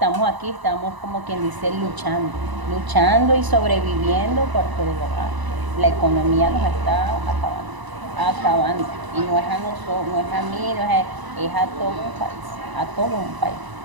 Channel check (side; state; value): left; late; 1.0 ms